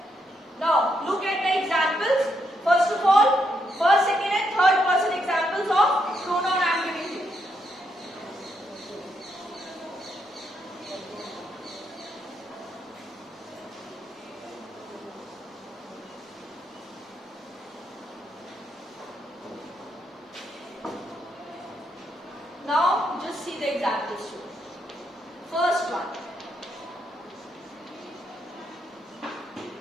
Now, look at the examples. First of all, first, second, and third person examples of pronoun I am giving you. Now, just see the examples too. First one.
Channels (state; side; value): normal; both; correlation 0.78